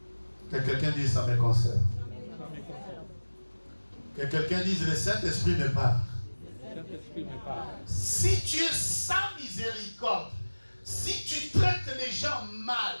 Que quelqu'un dise ça me concerne. Que quelqu'un dise le Saint-Esprit me parle. Si tu es sans miséricorde, si tu traites les gens mal,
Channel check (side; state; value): both; inverted; correlation -1.00